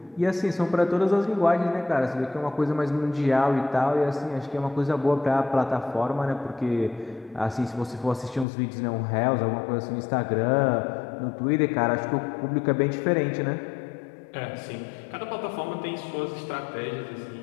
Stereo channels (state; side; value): drops out; right; at 8.5 s